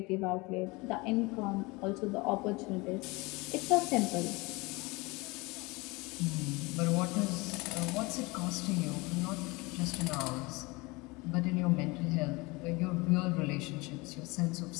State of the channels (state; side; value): quieter; right; 24.7 dB